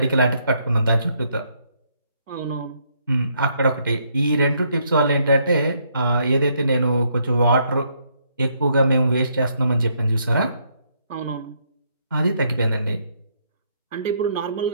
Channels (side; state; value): both; inverted; correlation -0.72